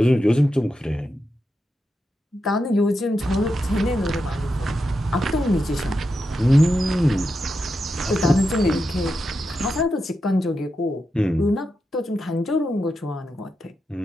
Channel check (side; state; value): both; normal; correlation 0.87